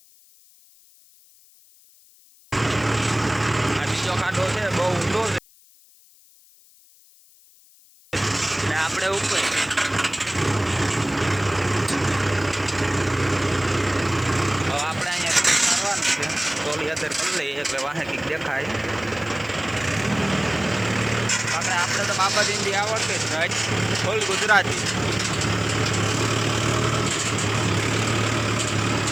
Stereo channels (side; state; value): left; noise; hiss, 27 dB below the sound